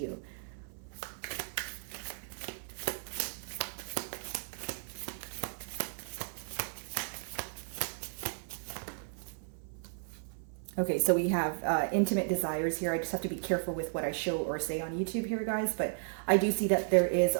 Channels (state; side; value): silent; left; 55 dB below the other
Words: Okay, so we have intimate desires here. I just have to be careful with what I show or say on YouTube here, guys. But I do see that there is a